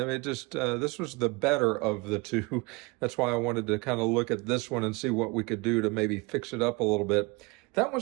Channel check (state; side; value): quieter; left; 26.1 dB